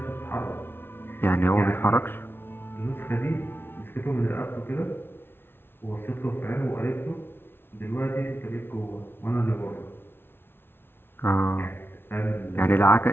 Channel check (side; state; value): right; late; 0.11 ms